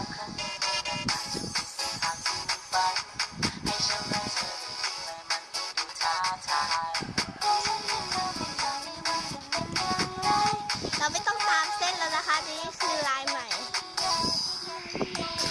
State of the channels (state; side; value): identical; both; correlation 1.00